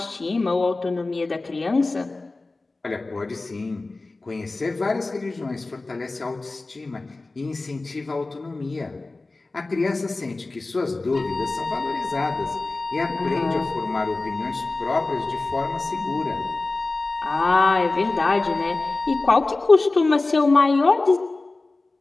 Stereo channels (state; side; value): quieter; right; 3.3 dB